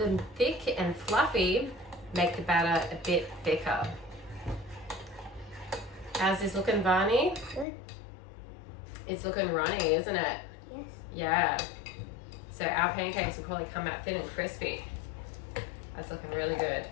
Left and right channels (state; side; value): drops out; right; at 7.7 s